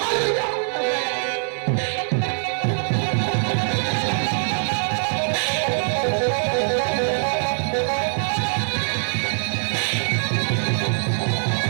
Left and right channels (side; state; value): left; silent; 64 dB below the other